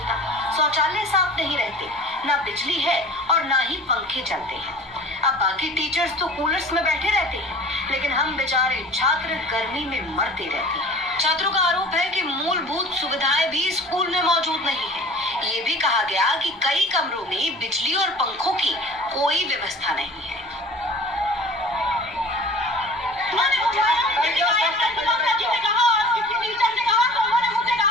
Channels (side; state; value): both; normal; correlation 0.42